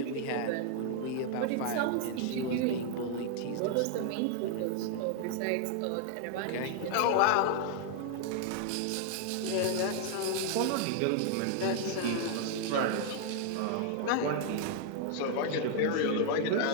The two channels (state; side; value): different; both; correlation 0.00